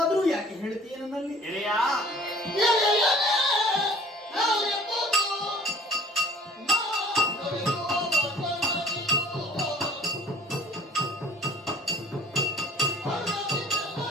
ಯಾಕೆ ಹೇಳ್ತೀಯ ನನ್ನಲ್ಲಿ?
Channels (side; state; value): both; normal; correlation 0.51